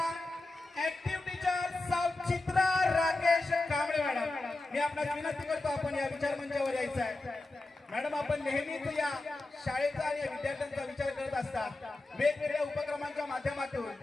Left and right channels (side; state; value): right; quieter; 3.0 dB